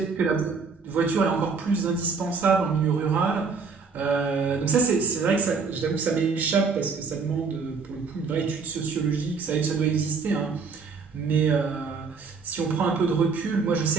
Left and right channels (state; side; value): quieter; left; 5.0 dB